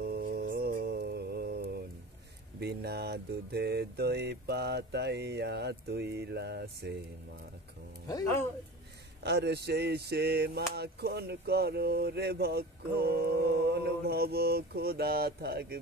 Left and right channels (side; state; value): both; normal; correlation 0.35